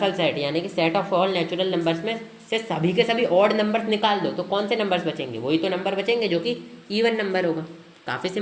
सेट यानी कि set of all natural numbers में से सभी के सभी ऑड नंबर्स निकाल दो, तो कौन से नंबर्स बचेंगे, वही तो नंबर बचेंगे जो कि इवन नंबर होगा। काफ़ी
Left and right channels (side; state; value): both; identical; correlation 1.00